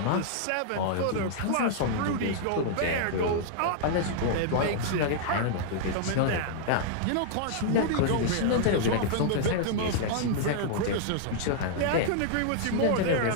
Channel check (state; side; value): different; both; correlation -0.01